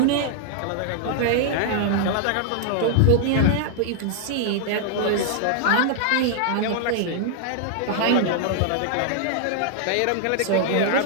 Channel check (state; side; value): different; both; correlation 0.00